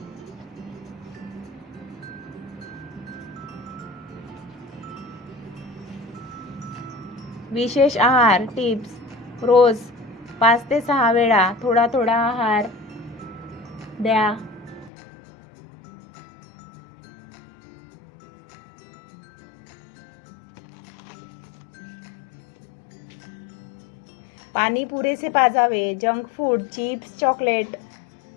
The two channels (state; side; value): drops out; right; at 14.9 s